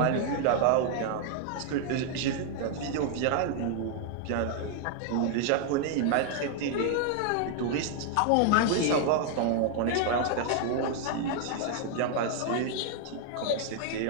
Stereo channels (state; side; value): different; both; correlation 0.00